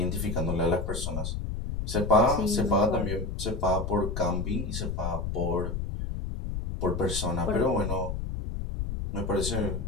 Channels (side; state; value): left; noise; rumble, 3 dB below the sound